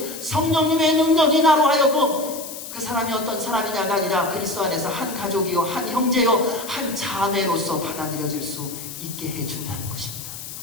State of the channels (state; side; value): noise; left; hiss, 10 dB below the sound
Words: 성령님의 능력이 나로 하여금 그 사람이 어떤 사람이냐가 아니라 그리스도 안에서 한 가족이요, 한 형제요, 한 자매로서 받아들여질 수 있게 해준다는 것입니다.